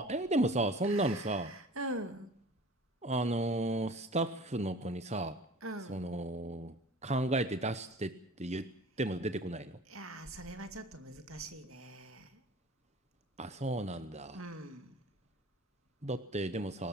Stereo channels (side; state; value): both; normal; correlation 0.43